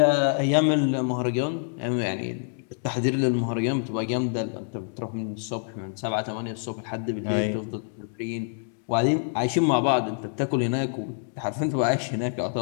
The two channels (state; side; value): silent; right; 61 dB below the other